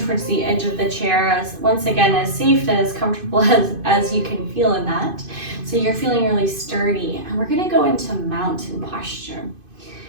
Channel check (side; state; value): left; late; 2.5 ms